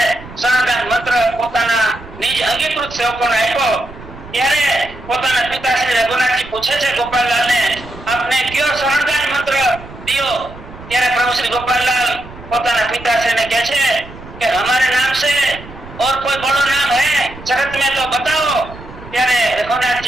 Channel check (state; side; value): noise; right; rumble, 16 dB below the sound